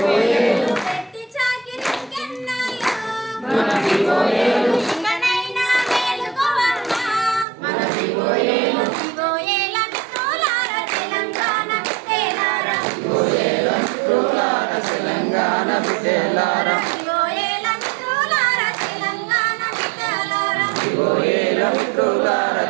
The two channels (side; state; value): left; drops out; at 7.5 s